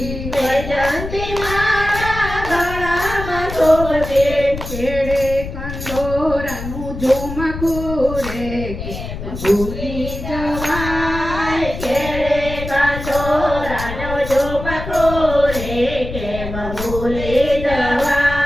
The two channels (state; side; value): noise; left; rumble, 8 dB below the sound